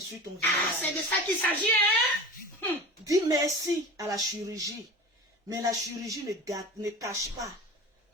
ton visage. C'est de ça qu'il s'agit, hein? Dis merci à la chirurgie. Mais la chirurgie ne cache pas,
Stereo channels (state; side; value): normal; both; correlation 0.34